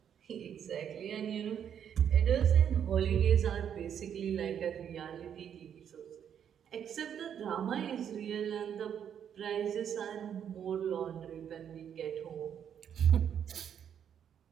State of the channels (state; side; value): quieter; left; 8.7 dB